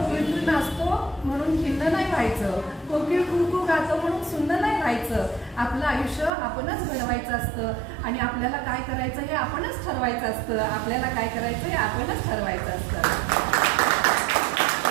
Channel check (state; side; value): drops out; left; at 6.3 s